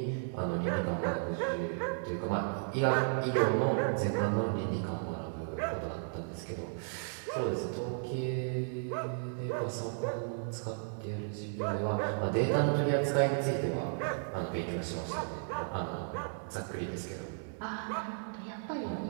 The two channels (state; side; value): silent; left; 55 dB below the other